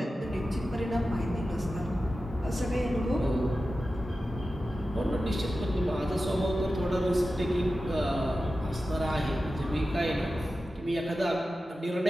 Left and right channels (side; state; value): both; normal; correlation 0.93